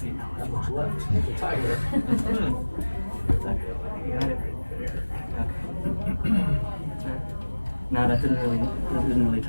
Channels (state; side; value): inverted; both; correlation -1.00